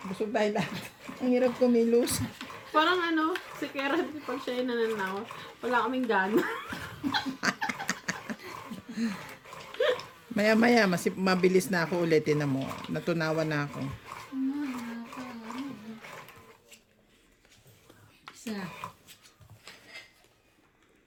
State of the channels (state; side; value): identical; both; correlation 1.00